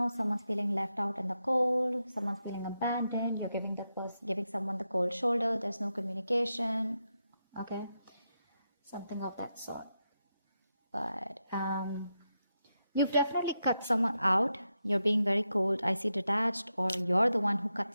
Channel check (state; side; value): inverted; both; correlation -0.86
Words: Someone's feeling left out in the cold. Someone's feeling abandoned. You're giving someone the cold shoulder. There's no communication. Okay, something of that sort. But you've definitely cut someone out. You're being very cold. I see detached, or you're the one who cut